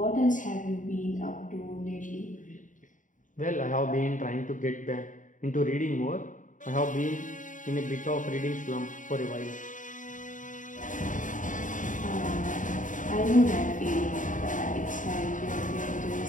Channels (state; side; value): late; right; 0.37 ms